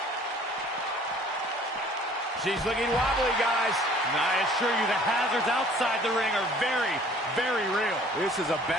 She's looking wobbly, guys. And I assure you the hazards outside the ring are very, very real. This is a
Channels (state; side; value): normal; both; correlation 0.53